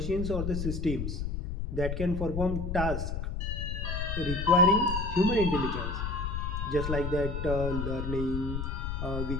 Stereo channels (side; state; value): left; noise; rumble, 3 dB below the sound